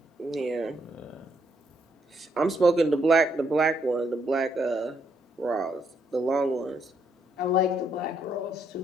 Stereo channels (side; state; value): both; normal; correlation 0.74